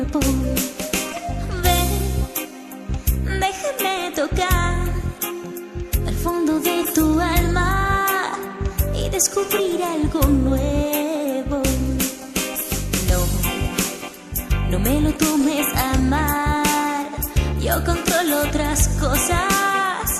Ven, déjame tocar al fondo de tu alma y descubrir algo nuevo. No me lo tomes a mal, yo controlo otras cosas,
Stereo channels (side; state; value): both; identical; correlation 1.00